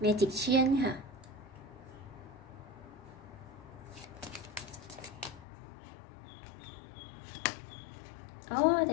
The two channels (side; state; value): right; drops out; at 5.5 s